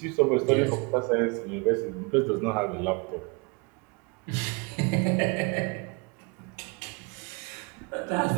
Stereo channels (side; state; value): left; quieter; 30.0 dB